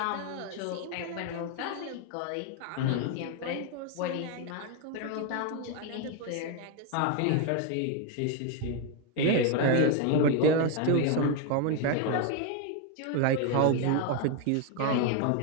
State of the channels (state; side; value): different; both; correlation 0.01